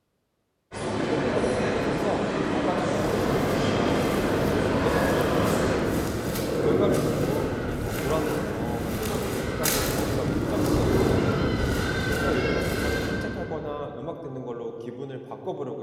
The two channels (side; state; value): both; identical; correlation 1.00